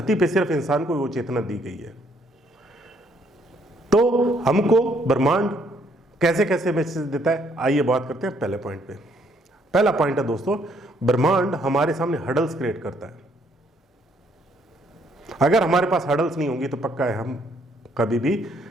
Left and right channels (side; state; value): both; normal; correlation 0.68